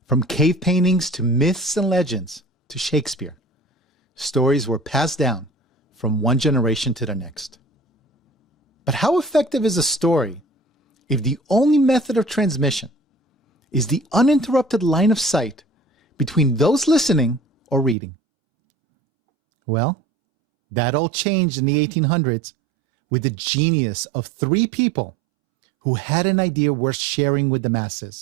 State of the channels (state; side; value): drops out; left; at 17.9 s